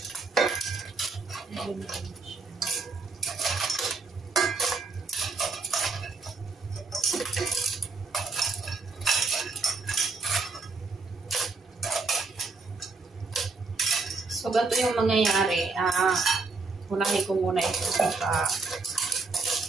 So, So, ganito yung mangyayari. Unahin ko muna ito sa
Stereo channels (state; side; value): quieter; left; 4.0 dB